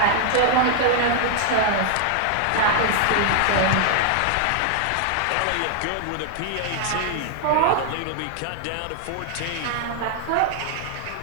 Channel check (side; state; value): both; different; correlation 0.00